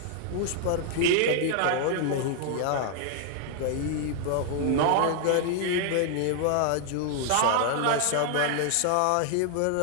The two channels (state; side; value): different; both; correlation 0.00